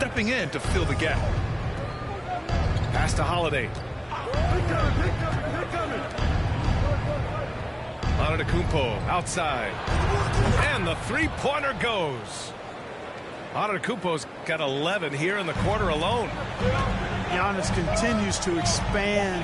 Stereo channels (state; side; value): identical; both; correlation 1.00